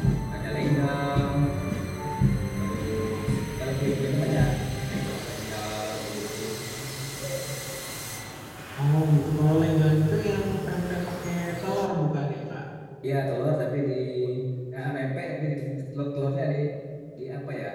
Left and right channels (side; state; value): both; identical; correlation 1.00